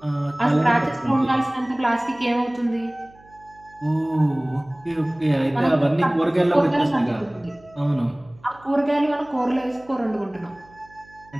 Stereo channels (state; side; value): noise; right; hum, 26 dB below the sound